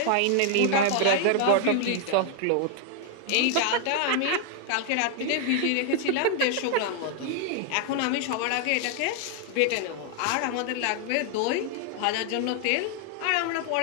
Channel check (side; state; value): both; different; correlation 0.00